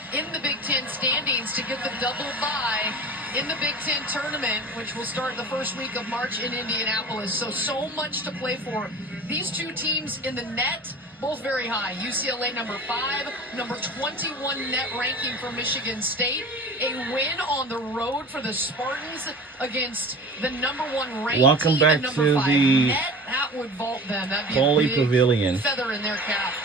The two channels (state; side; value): normal; both; correlation 0.37